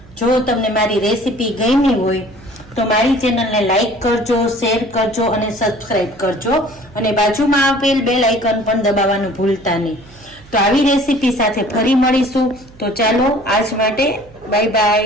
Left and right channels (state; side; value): noise; right; hum, 24 dB below the sound